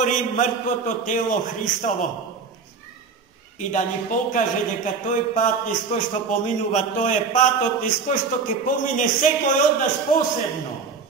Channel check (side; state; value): left; quieter; 5.2 dB